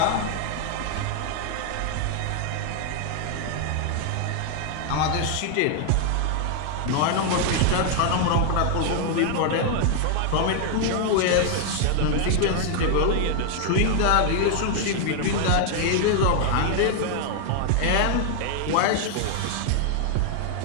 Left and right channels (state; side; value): different; both; correlation 0.00